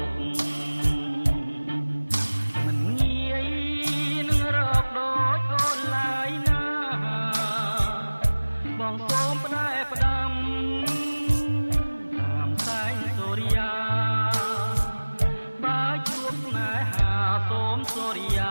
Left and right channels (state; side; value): inverted; both; correlation -1.00